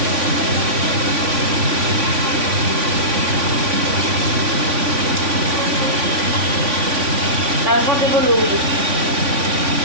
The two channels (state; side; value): late; left; 3.5 ms